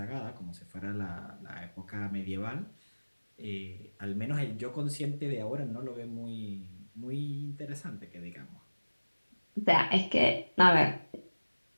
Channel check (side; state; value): both; inverted; correlation -1.00